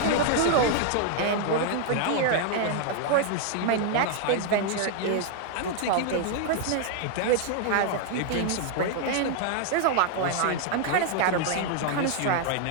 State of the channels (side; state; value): both; different; correlation 0.00